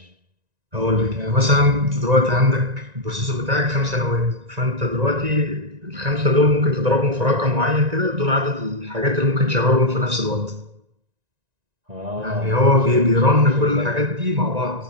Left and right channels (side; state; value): left; late; 1.9 ms